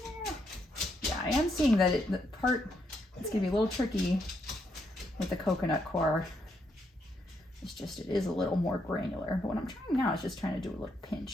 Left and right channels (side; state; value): both; normal; correlation 0.77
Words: there. Yeah, I am seeing that the part that's going to be a little tricky with the coconut coir. It's just, it is a little more granular. But what I'm trying now is just trying to do a little